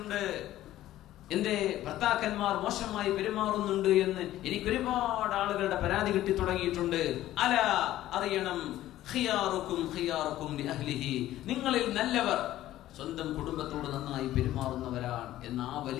എന്റെ ഭർത്താക്കന്മാർ മോശമായി പെരുമാറുന്നുണ്ട് എന്ന് എനിക്ക് ഒരുപാട് ആളുകളുടെ പരാതി കിട്ടി തുടങ്ങിയിട്ടുണ്ട്. അല അറിയണം, ഖിയാറുക്കും ഖിയാറുക്കും ലിഅഹ്ലിഹി, നിങ്ങളിൽ നല്ലവർ സ്വന്തം കുടുംബത്തോട് നന്നായി പെരുമാറുന്നവരാണ് എന്ന ആ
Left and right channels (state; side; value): quieter; right; 14.2 dB